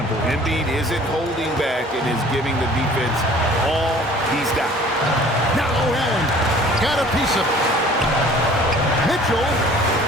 Embiid isn't holding back and is giving the defense all he's got. Now Allen got a piece of it. Mitchell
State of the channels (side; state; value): both; normal; correlation 0.50